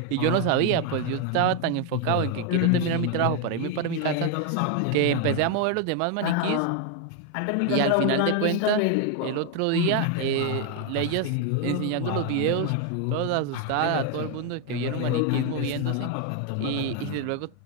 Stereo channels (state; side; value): different; both; correlation 0.01